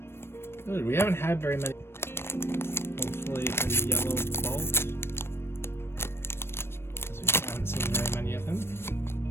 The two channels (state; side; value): late; right; 0.12 ms